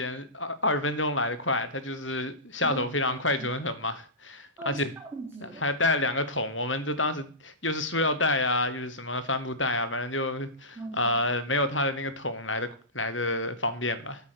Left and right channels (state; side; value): normal; both; correlation -0.19